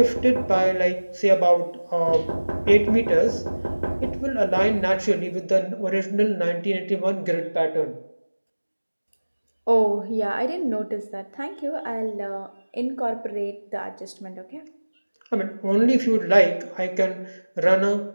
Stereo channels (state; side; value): inverted; both; correlation -1.00